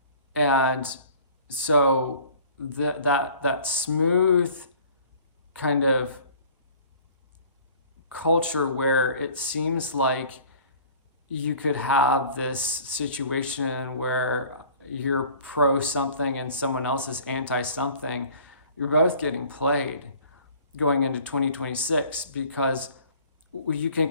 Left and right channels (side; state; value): both; inverted; correlation -0.49